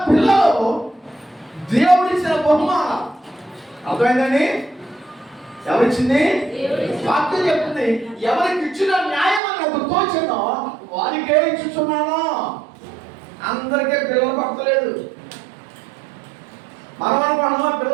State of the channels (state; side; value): drops out; left; at 9.4 s